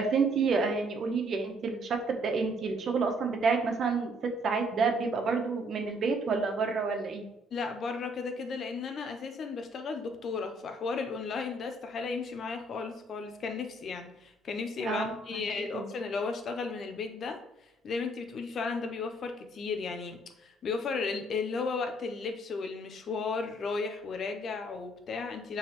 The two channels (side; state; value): both; normal; correlation 0.65